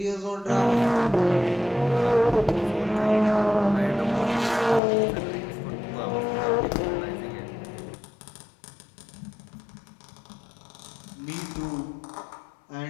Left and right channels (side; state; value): right; drops out; at 4.8 s